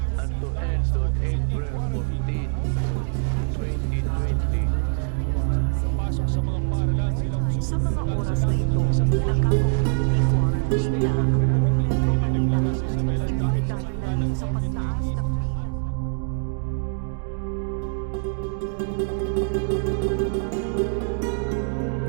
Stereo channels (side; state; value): left; silent; digital silence